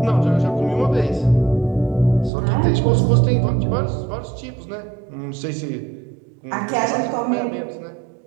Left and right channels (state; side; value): drops out; left; at 2.3 s